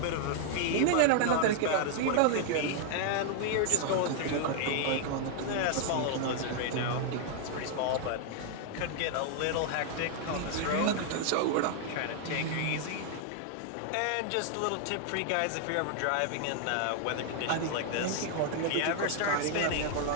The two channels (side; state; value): both; different; correlation 0.00